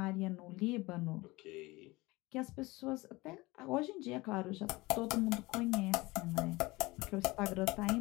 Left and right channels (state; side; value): quieter; right; 21.7 dB